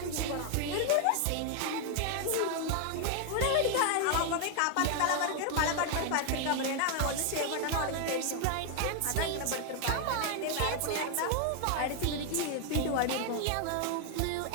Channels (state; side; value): different; both; correlation 0.00